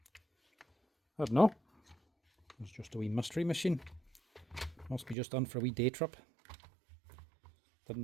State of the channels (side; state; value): left; drops out; at 5.2 s